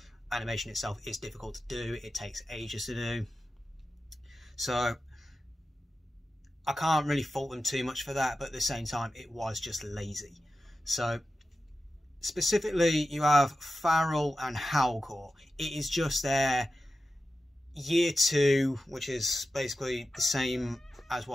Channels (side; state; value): both; normal; correlation 0.93